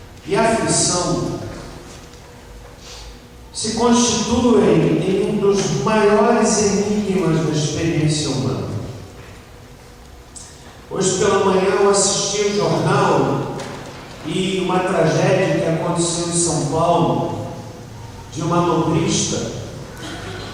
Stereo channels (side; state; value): both; identical; correlation 1.00